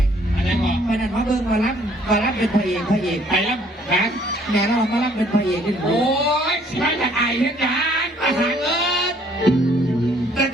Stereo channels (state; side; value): normal; both; correlation 0.62